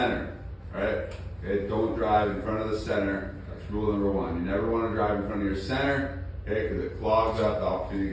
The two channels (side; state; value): both; identical; correlation 1.00